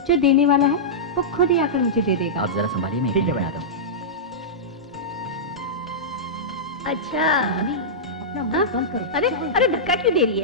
जो देने वाला है, वो खुद ही आकर मुझे दे देगा। आप जरा संभालिए, मैं ठीक है बना दूँ। अच्छा, अपना मुंह बंद करो। अरे धक्का क्यों दे रही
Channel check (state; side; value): normal; both; correlation -0.13